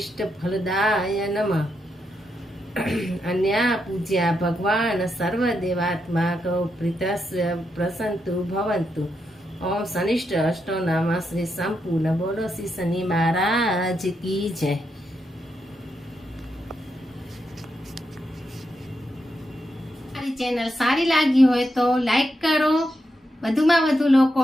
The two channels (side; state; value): both; normal; correlation 0.83